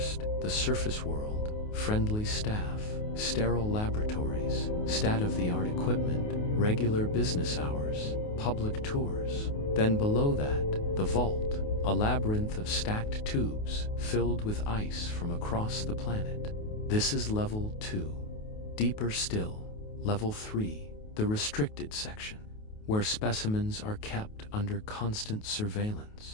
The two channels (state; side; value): late; right; 28 ms